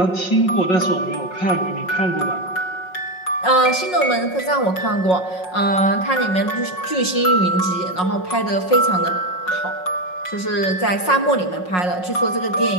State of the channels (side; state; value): right; late; 5.5 ms